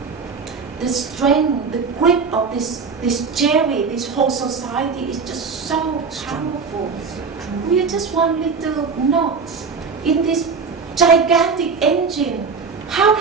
the strength, the grip of this Jerry, this whole society is just so powerful. We are just one little knot in this gigantic engine. How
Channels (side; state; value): left; quieter; 5.2 dB